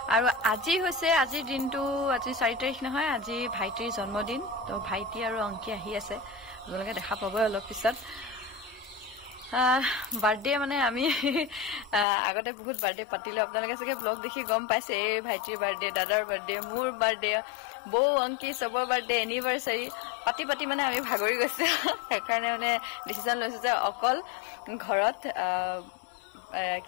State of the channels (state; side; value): drops out; right; at 12.1 s